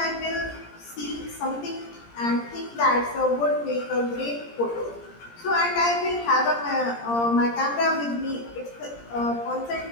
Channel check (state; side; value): late; right; 17 ms